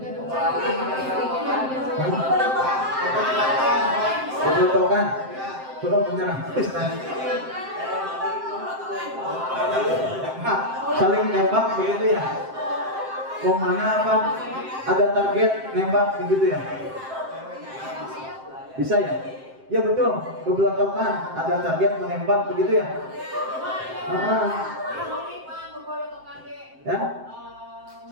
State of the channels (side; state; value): left; late; 7.6 ms